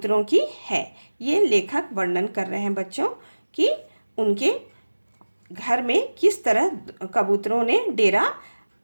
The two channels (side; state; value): both; inverted; correlation -1.00